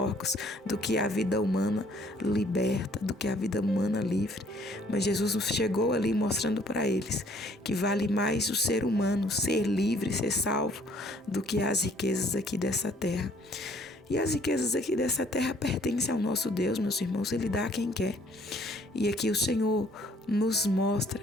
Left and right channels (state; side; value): normal; both; correlation 0.61